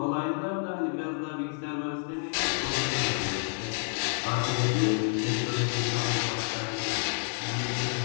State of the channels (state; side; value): silent; right; 58 dB below the other